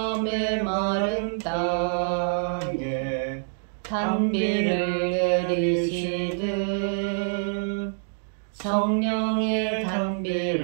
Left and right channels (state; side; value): silent; left; digital silence